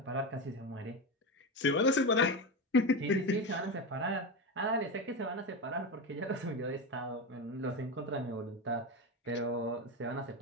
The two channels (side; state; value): both; normal; correlation 0.17